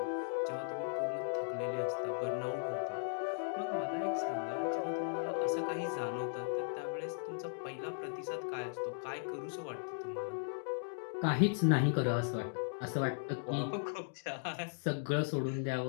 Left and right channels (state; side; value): silent; right; digital silence